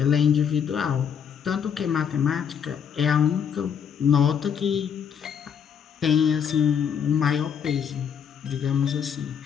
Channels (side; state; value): right; quieter; 7.7 dB